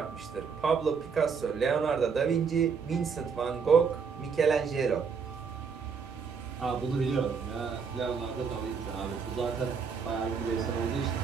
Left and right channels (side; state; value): left; quieter; 5.9 dB